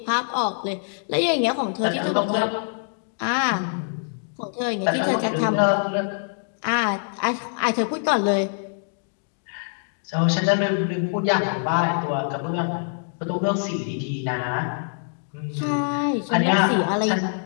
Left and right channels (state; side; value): silent; right; digital silence